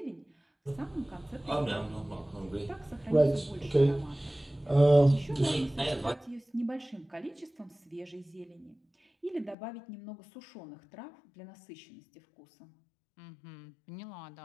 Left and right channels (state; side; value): drops out; right; at 9.6 s